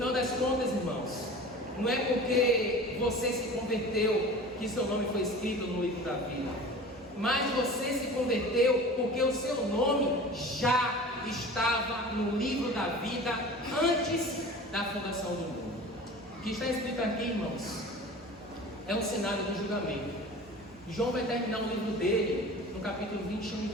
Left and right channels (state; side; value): normal; both; correlation 0.38